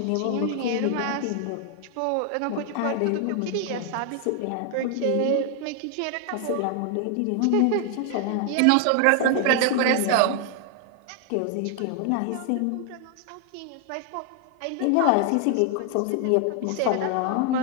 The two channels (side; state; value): both; different; correlation 0.00